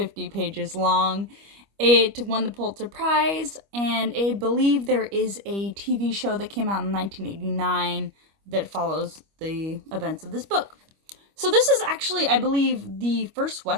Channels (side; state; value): left; late; 25 ms